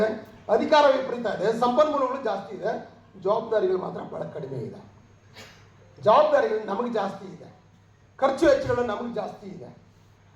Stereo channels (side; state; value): both; identical; correlation 1.00